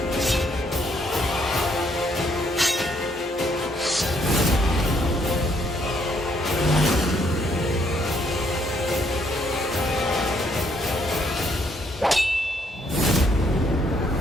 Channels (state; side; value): normal; both; correlation 0.70